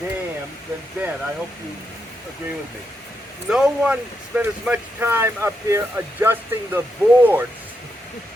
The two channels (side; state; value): both; normal; correlation 0.83